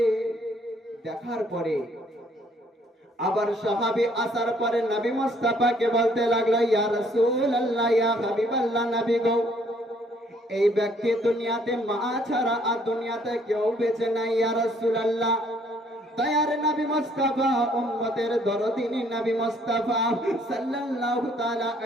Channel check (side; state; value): both; normal; correlation 0.64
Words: দেখার পরে আবার সাহাবী আসার পরে নবী মুস্তাফাকে বলতে লাগলো, ইয়া রাসূলুল্লাহ, ইয়া হাবিবাল্লাহ, নবী গো, এই ব্যক্তি দুনিয়াতে মা ছাড়া আর দুনিয়াতে কেউ বেঁচে নাই। ইয়া রাসূলুল্লাহ, দয়ার নবী মুস্তাফা উম্মতের দরদিনী নবী মুস্তাফা সাল্লাল্লাহু তাআলা